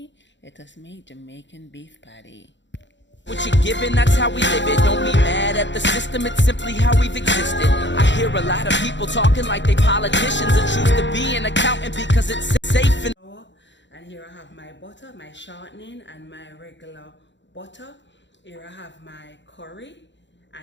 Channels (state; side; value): late; right; 0.53 ms